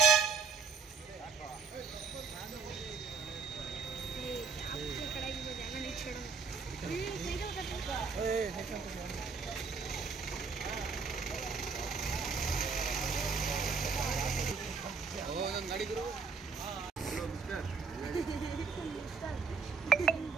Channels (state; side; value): quieter; left; 5.0 dB